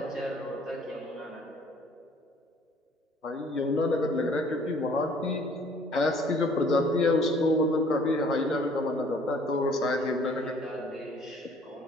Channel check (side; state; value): both; normal; correlation 0.57